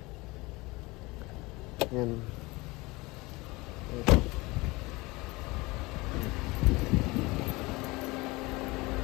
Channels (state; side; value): quieter; right; 22.9 dB